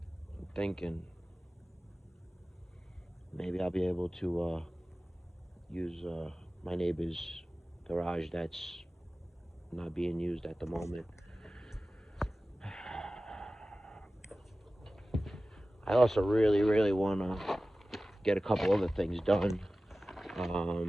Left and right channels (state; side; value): normal; both; correlation 0.96